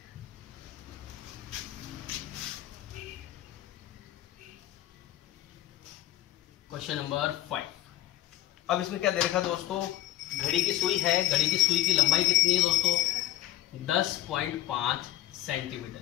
Question number 5। अब इसमें क्या दे रखा दोस्तों, घड़ी की सुई है, घड़ी की सुई की लंबाई कितनी है दोस्तों 10.5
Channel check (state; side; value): quieter; right; 14.7 dB